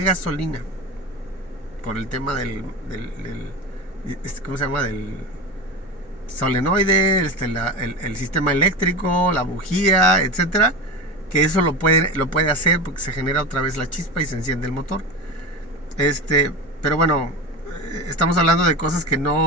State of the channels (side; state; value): both; normal; correlation 0.24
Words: Por el tema ¿cómo se llama? Del solenoide, el sistema eléctrico, la bujía, etcétera, que eso lo puede hacer porque se genera otra vez la chispa y se enciende el motor. Pero bueno, estamos hablando de cosas que